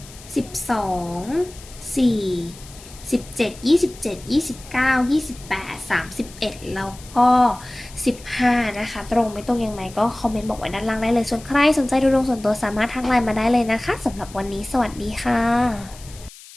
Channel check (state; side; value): noise; left; hiss, 19 dB below the sound